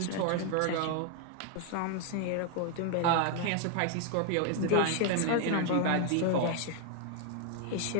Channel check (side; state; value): both; different; correlation 0.00